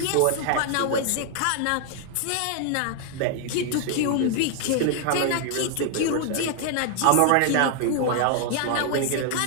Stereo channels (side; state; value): both; different; correlation 0.00